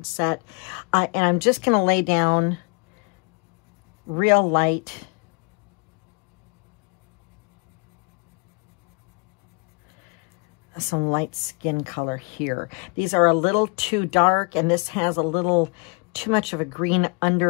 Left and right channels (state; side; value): quieter; right; 32.9 dB